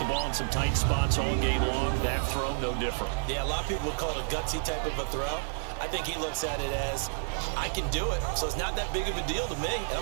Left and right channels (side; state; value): left; silent; 58 dB below the other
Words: ball in some tight spots all game long. That throw, no different. Yeah, a lot of people would call it a gutsy type of a throw. I think he looks at it as, I can do it, so it's not that big of a deal to me, and